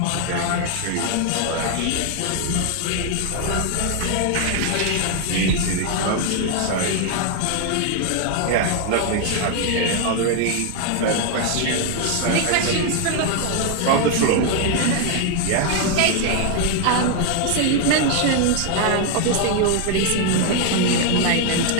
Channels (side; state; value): both; different; correlation 0.00